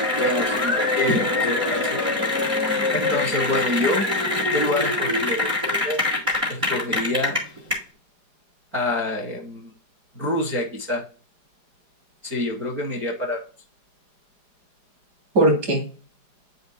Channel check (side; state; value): left; late; 4.9 ms